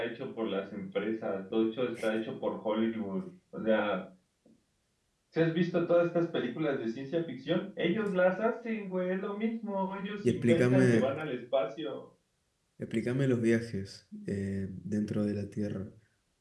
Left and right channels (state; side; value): identical; both; correlation 1.00